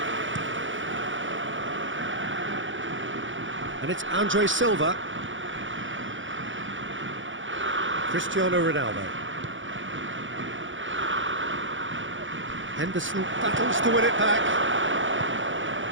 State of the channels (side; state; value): left; late; 0.56 ms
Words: And it's Andre Silva. Cristiano Ronaldo. Henderson battles to win it back.